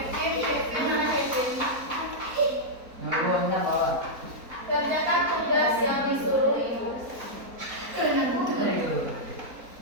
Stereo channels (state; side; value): late; left; 4.2 ms